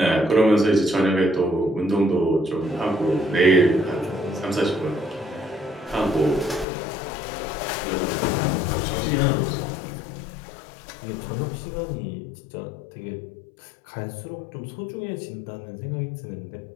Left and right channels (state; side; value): drops out; right; at 6.7 s